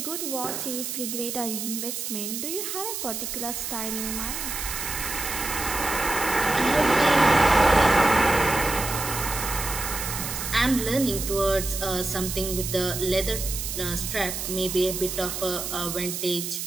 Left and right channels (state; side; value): noise; right; hiss, 5 dB below the sound